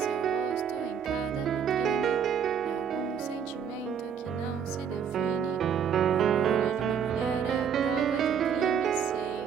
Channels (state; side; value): quieter; left; 7.6 dB